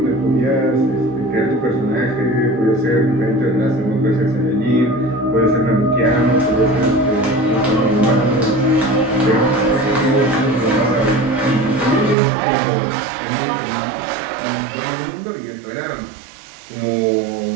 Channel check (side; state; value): left; drops out; at 12.2 s